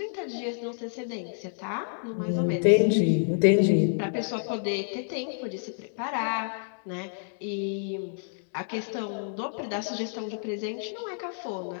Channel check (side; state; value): right; silent; digital silence